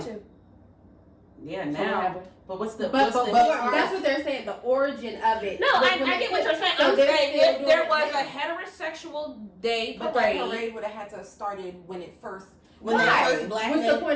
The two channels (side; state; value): both; identical; correlation 1.00